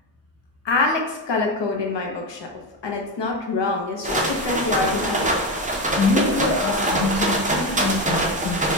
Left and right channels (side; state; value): both; normal; correlation 0.14